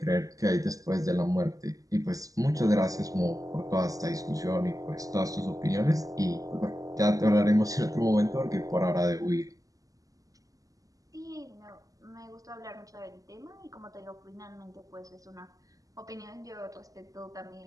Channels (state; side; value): late; left; 0.17 ms